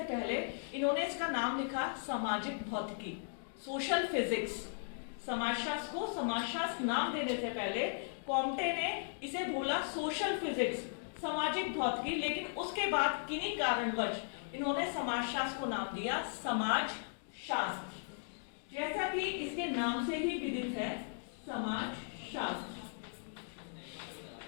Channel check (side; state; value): right; silent; digital silence